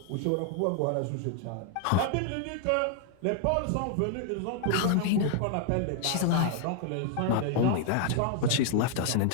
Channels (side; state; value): both; different; correlation 0.00